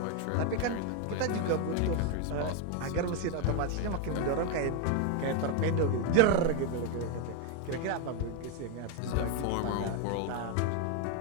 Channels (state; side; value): different; both; correlation 0.01